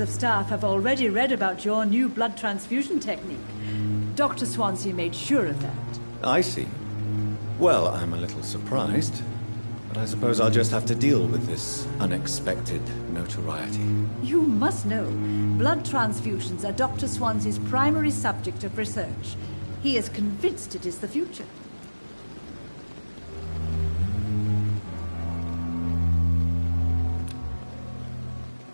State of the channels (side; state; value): both; inverted; correlation -1.00